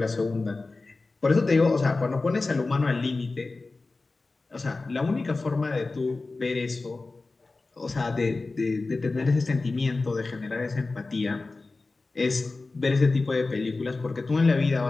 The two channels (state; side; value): quieter; right; 3.5 dB